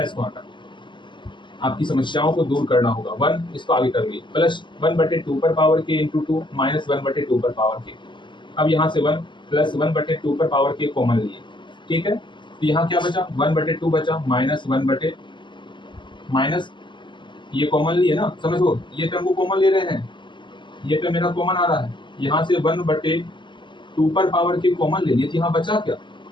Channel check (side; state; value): right; late; 0.23 ms